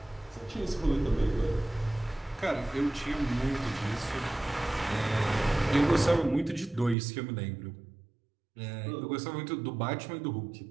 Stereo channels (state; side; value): drops out; left; at 7.0 s